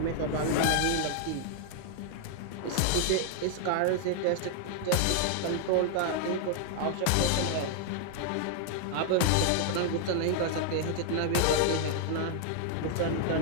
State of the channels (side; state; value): both; different; correlation 0.00